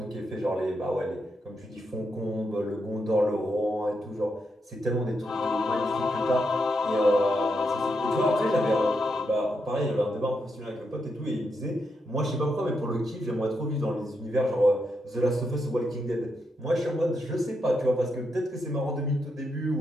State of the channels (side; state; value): both; normal; correlation 0.82